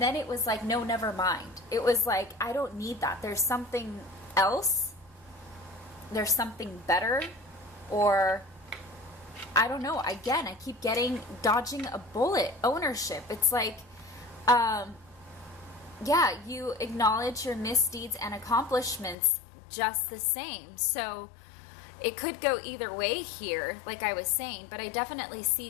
it was like, no, never mind. It was like, I don't need that. There's something else. There's something better, or I don't know. Again, I keep getting dodging a bullet. Ownership. It's like, yeah, you acknowledge your misdeeds and accomplishments just the same. So it could go either way here, like I was saying, but I definitely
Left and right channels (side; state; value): right; drops out; at 19.2 s